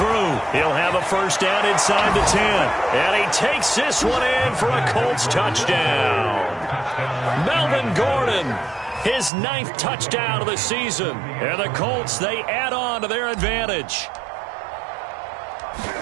He'll have a 1st down inside the 10. And he takes this one in for a Colts touchdown. Melvin Gordon, his 9th touchdown of the season. And the Colts, they add on to their advantage.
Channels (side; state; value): left; drops out; at 9.3 s